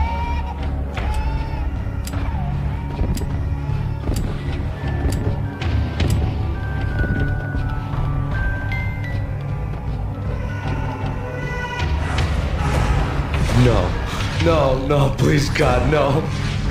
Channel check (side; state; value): both; identical; correlation 1.00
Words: No, please God, no.